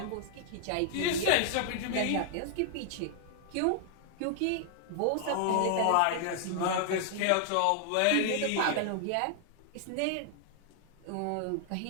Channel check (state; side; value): different; both; correlation 0.00